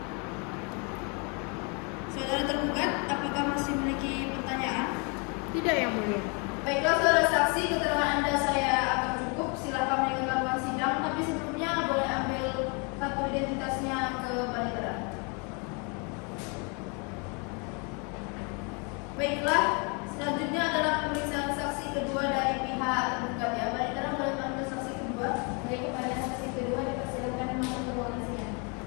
Saudara tergugat, apakah masih memiliki pertanyaan? Tidak yang mulia. Baiklah saudara saksi, keterangan Anda saya akan cukup. Silakan meninggalkan ruang sidang, tapi sebelumnya boleh ambil kartu identitasnya ke panitera. Baiklah, selanjutnya adalah pemeriksaan saksi kedua dari pihak tergugat ya. Panitera boleh panggil saksi kedua. Baik, kepada saksi kedua dipersilakan masuk ke ruangan sidang.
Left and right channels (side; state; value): right; quieter; 33.8 dB